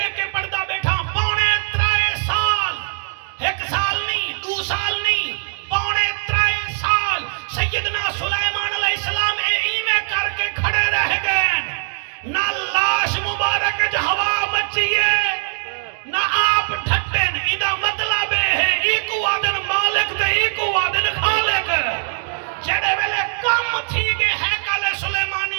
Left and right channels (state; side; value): silent; left; 55 dB below the other